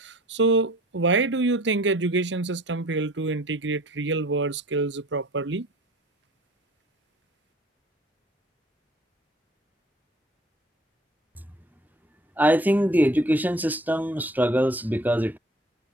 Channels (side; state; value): both; normal; correlation 0.50